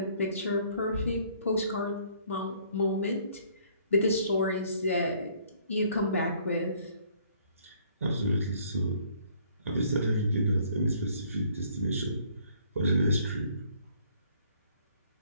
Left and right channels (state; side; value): inverted; both; correlation -0.62